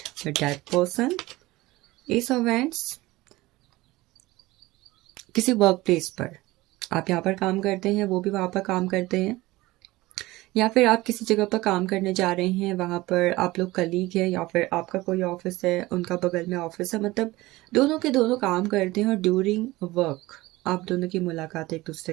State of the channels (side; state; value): left; quieter; 19.4 dB